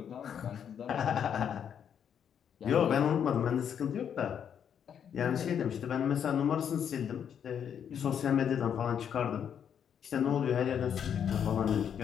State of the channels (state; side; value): quieter; right; 8.3 dB